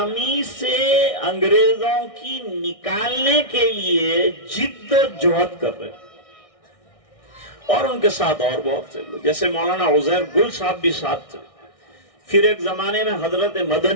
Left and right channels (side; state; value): right; late; 1.6 ms